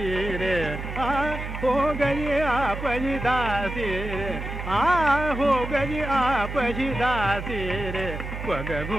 रे हो गई आप ही दासी रे हो गई आप ही दासी रे पग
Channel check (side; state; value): right; noise; hum, 7 dB below the sound